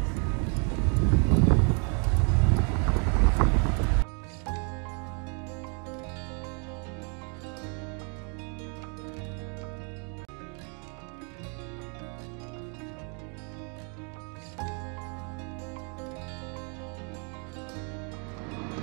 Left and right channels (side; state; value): left; quieter; 38.0 dB